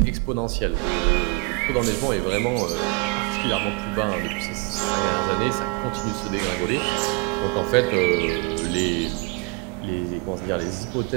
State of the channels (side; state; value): left; quieter; 29.0 dB